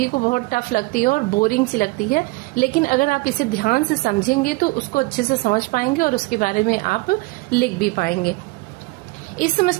को बहुत टफ लगती है और बोरिंग सी लगती है, लेकिन अगर आप इसे ध्यान से समझेंगे तो उसको अच्छे से समझ पाएंगे और उसके बारे में आप लिख भी पाएंगे। इस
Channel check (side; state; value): left; quieter; 23.3 dB